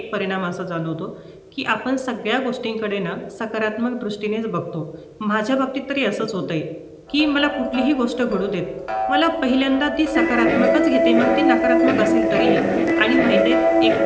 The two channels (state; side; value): identical; both; correlation 1.00